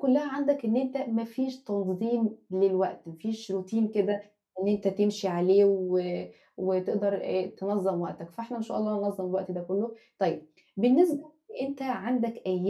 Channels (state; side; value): identical; both; correlation 1.00